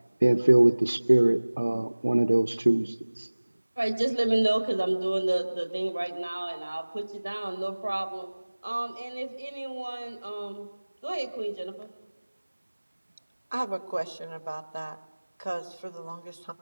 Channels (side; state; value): both; inverted; correlation -1.00